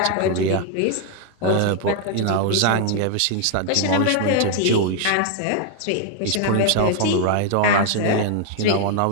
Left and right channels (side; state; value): both; different; correlation 0.00